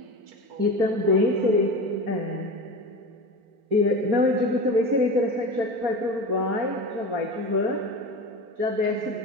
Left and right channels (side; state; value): left; late; 4.4 ms